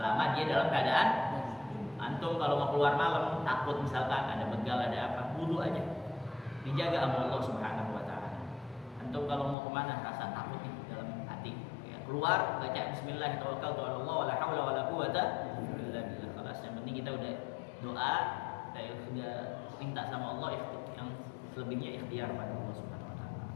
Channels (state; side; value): drops out; right; at 9.6 s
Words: dia dalam keadaan antum kalau mau keluar malam takut misalkan ada begal ada apa, wudu aja, dijaga sama Allah Subhanahu wa taala. Antum kalau mau kemana rasa takut di dalam hati, ya, keluar baca bismillah tawakkaltu ala Allah wala haula wala quwata illa billah. Kelas yang penting kita udah doa, kita sudah minta sama Allah, yang selebihnya ikhtiar pada Allah Subhanahu wa taala.